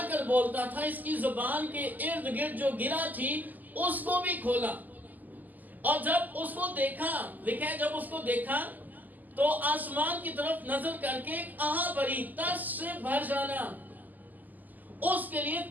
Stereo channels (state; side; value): late; left; 0.083 ms